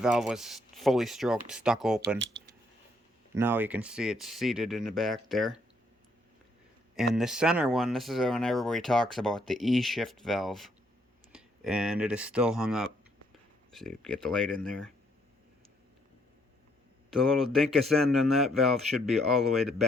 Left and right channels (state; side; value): normal; both; correlation 0.70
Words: was fully stroked, stuck open. Now you can see it's seated in the back there. And the center one, this is when everybody talks about the E-shift valve, and it is still hung up. So you get the light in there. The little dinkus end on that valve should be all the way